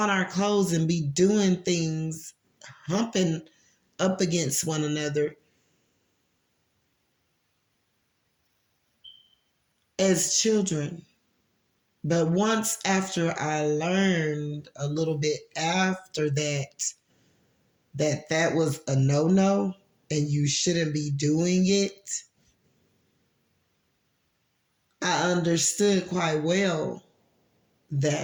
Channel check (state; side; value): identical; both; correlation 1.00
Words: our clothes and be doing things, humping up against one another as children. But once after I learned a little bit after that, that was a no-no and you shouldn't be doing it, I understood quite well